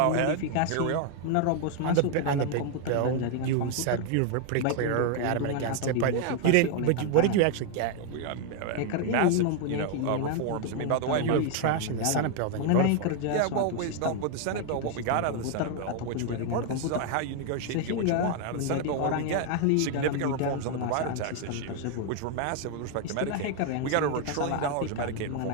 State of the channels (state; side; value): different; both; correlation 0.01